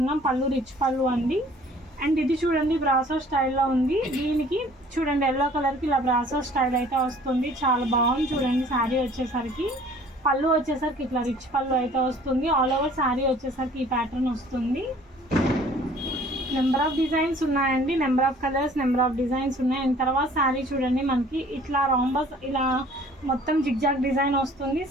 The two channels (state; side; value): normal; both; correlation 0.53